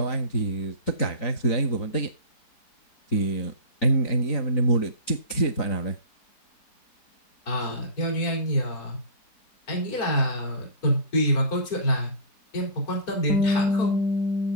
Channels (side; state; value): right; late; 3.9 ms